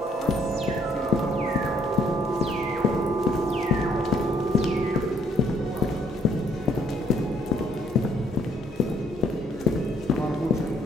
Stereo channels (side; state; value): both; normal; correlation 0.65